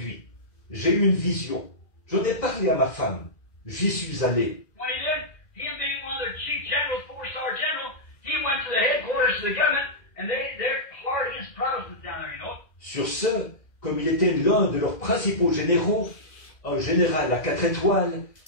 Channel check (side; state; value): right; late; 2.1 ms